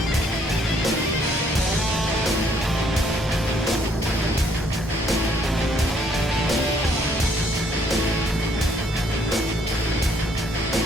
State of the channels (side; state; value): both; normal; correlation 0.66